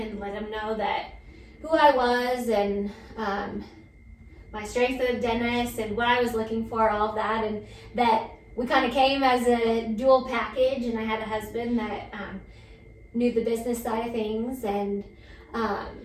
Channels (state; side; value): identical; both; correlation 1.00